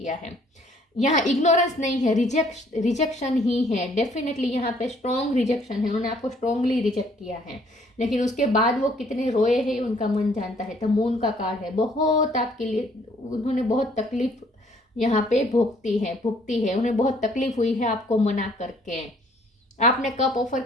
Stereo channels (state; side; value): normal; both; correlation 0.62